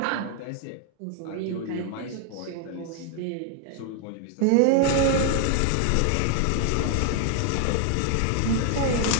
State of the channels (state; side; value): different; both; correlation 0.00